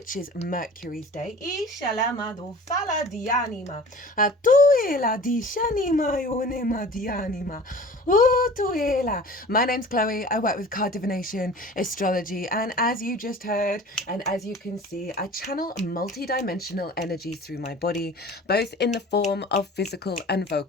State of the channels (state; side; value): normal; both; correlation 0.42